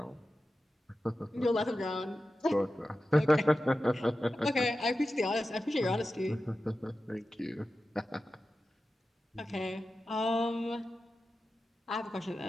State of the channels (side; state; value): both; normal; correlation 0.93